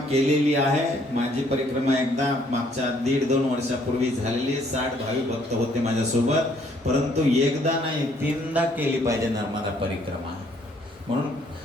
केलेली आहे, माझी परिक्रमा एकदा मागच्या 1.5-2 वर्षापूर्वी झालेली, 60 भाविक भक्त होते माझ्यासोबत, परंतु एकदा नाही 3दा केली पाहिजे नर्मदा परिक्रमा. म्हणून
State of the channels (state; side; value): normal; both; correlation 0.65